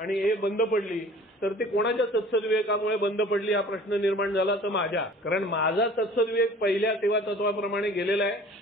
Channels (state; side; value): normal; both; correlation 0.47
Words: हे बंद पडली, तर ते कोणाच्या सत्सद्विवेकामुळे बंद पडली हा प्रश्न निर्माण झाला तर माझ्या. कारण माझा सत्सद्विवेक पहिल्या सेवा तत्वाप्रमाणे गेलेला आहे